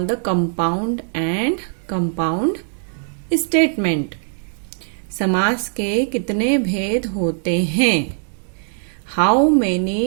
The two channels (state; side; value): silent; left; 58 dB below the other